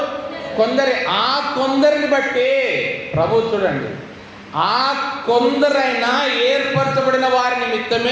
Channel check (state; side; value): identical; both; correlation 1.00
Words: కొందరే. ఆ కొందరిని బట్టి ప్రభు చూడండి, ఆ కొందరైనా ఏర్పరచబడిన వారి